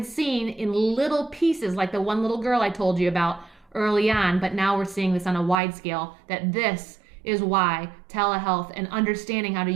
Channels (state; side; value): drops out; left; at 5.6 s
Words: seen in little pieces, like the one little girl I told you about early on, but now we're seeing this on a wide scale, that this is why telehealth and understanding how to